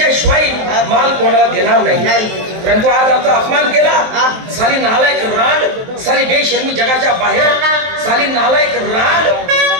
माल कोणाला देणार नाही, परंतु आज आमचा अपमान केला. साली नालायक रांड, साली बेशर्मी जगाच्या बाहेर, साली नालायक रांड.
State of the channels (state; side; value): late; left; 23 ms